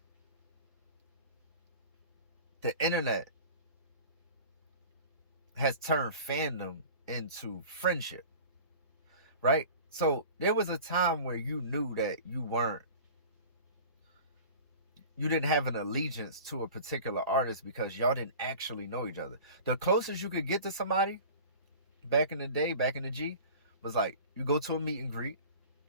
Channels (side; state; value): both; inverted; correlation -0.40